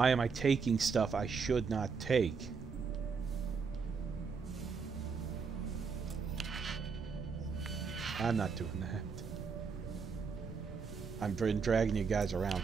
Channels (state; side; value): quieter; left; 5.4 dB